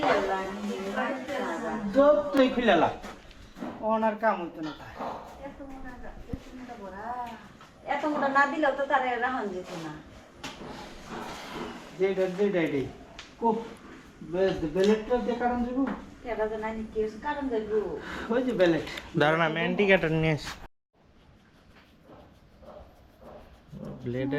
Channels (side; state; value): both; identical; correlation 1.00